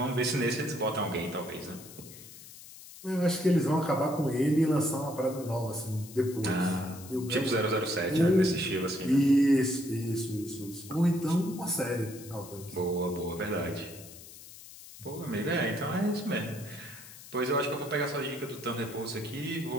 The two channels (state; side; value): noise; left; hiss, 17 dB below the sound